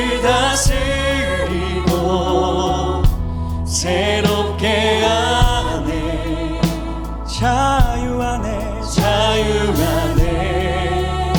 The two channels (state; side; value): identical; both; correlation 1.00